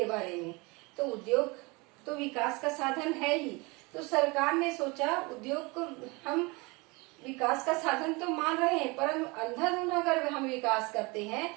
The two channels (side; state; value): left; quieter; 26.3 dB